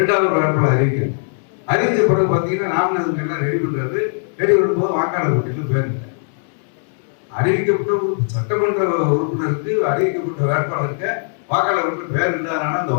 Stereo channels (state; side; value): silent; right; 64 dB below the other